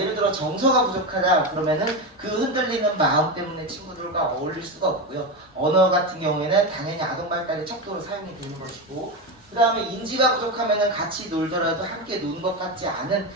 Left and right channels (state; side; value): normal; both; correlation 0.16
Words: 들어 정서가 부족하다 그러면은 그 흔들리는 마음 때문에 친구들과 어울릴 수가 없고요. 언어 같은 경우에는 당연히 아동 발달의 척도로 사용이 되는 것이고 그 다음에 인지가 부족하면은 같이 놀더라도 함께 노는 것 같지 않은